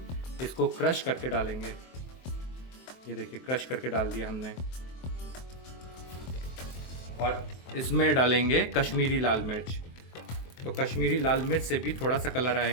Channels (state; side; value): late; right; 23 ms